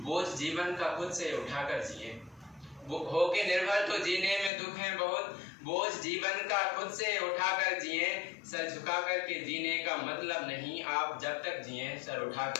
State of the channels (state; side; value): drops out; right; at 4.5 s